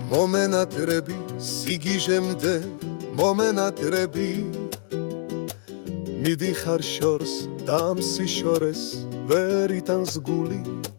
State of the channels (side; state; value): right; silent; digital silence